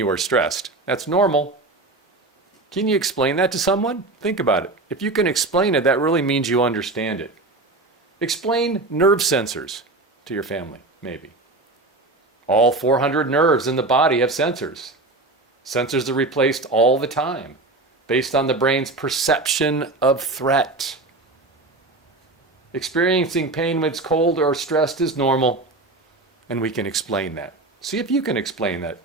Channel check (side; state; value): left; quieter; 3.1 dB